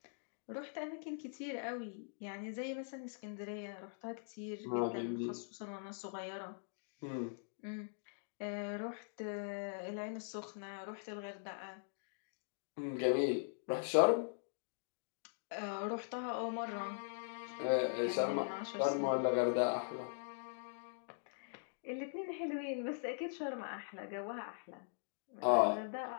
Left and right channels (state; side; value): silent; right; digital silence